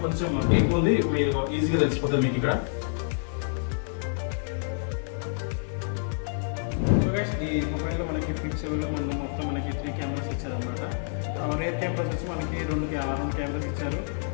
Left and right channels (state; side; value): silent; right; digital silence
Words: కొంచెం ఎక్కువ ఉంది. మీరు ఈజీగా తెలిసిపోతుంది మీకు ఇక్కడ. ఈ మొబైల్ లో మనకి ఫ్లిప్ 7 లో మనం మొత్తం మనకి 3 కెమెరాస్ ఇచ్చారు అనమాట. రేర్ కెమెరాస్ వచ్చి మనకి రెండు కెమెరాస్ ఇచ్చారు.